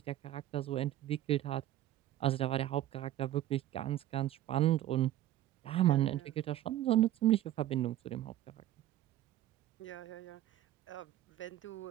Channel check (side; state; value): left; quieter; 13.3 dB